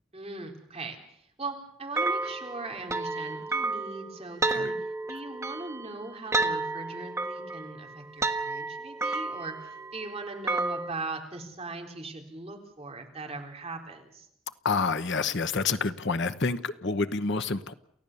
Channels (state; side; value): normal; both; correlation 0.36